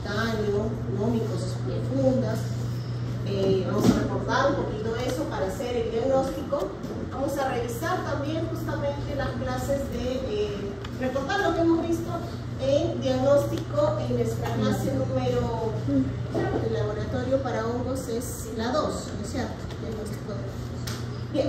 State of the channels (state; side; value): identical; both; correlation 1.00